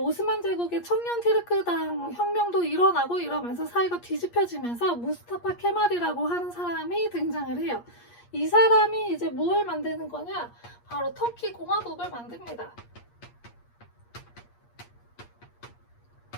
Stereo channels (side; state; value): right; late; 8.5 ms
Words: 제국의 청년 티르크당 혁명도 일어나고 이러면서 사이가 뒤집혀지면서 무스타파 케말이라고 하는 사람이 등장을 해요. 이 사람이 이제 무엇을 만드는 거냐? 바로 터키 공화국을 만듭니다.